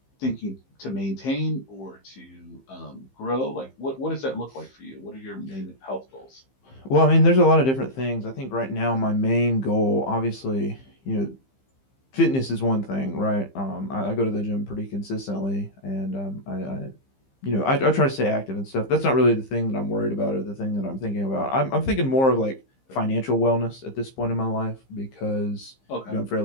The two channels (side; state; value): right; late; 15 ms